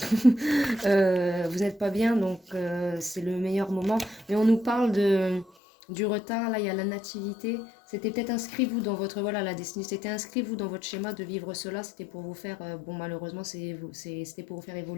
n'êtes pas bien, donc c'est le meilleur moment. Mais on nous parle du retard, là il y a la nativité. C'était peut-être inscrit vous dans votre, voilà, la destinée, c'était inscrit vous dans votre schéma de vivre cela, c'était pour vous faire, bon malheureusement c'était pour vous faire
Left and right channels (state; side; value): drops out; right; at 5.5 s